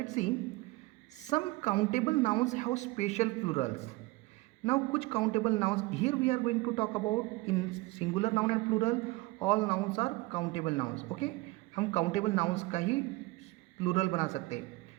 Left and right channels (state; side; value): quieter; left; 21.3 dB